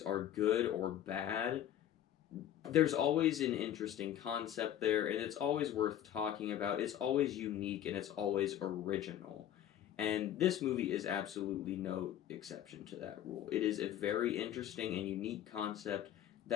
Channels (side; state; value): right; quieter; 11.1 dB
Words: are good or bad, there's always an interesting concept there, and it's always worth talking about. It's always unique, and it's always original. And this movie is absolutely no exception to that rule. It is a very interesting and unique concept